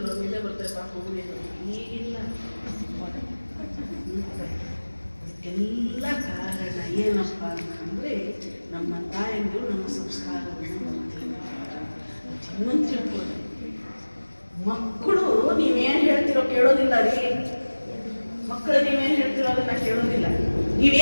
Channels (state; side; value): inverted; both; correlation -1.00